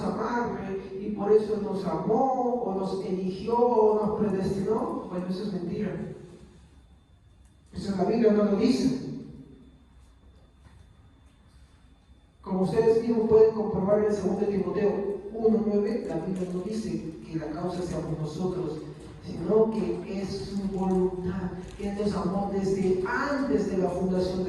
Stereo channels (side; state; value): both; identical; correlation 1.00